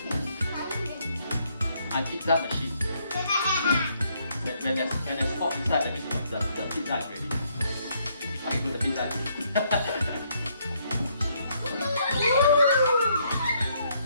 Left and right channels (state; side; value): inverted; both; correlation -0.71